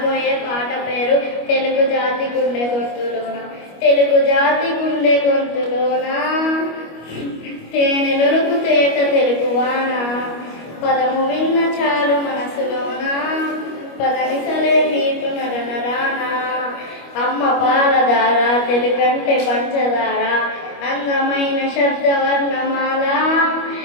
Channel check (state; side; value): late; right; 25 ms